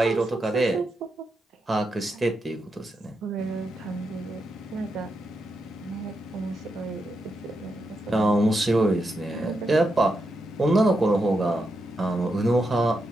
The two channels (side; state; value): both; normal; correlation 0.84